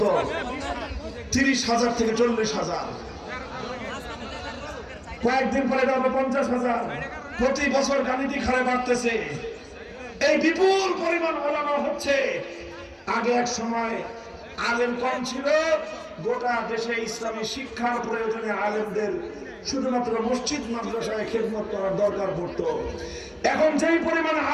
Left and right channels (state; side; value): identical; both; correlation 1.00